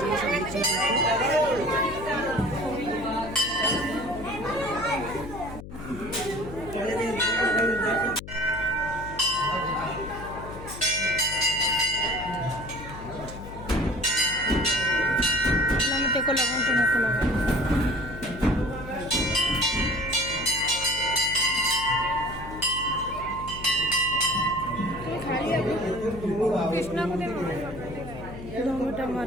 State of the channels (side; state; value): left; noise; hum, 12 dB below the sound